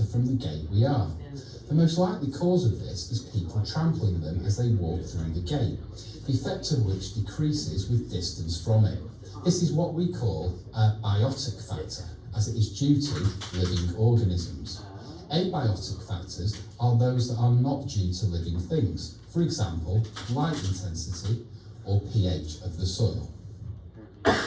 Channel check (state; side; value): identical; both; correlation 1.00